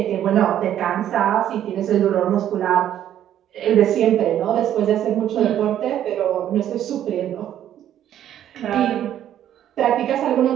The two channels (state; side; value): quieter; left; 11.0 dB